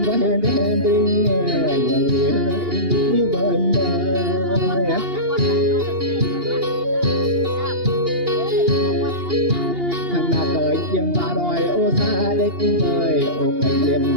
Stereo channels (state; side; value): late; left; 2.8 ms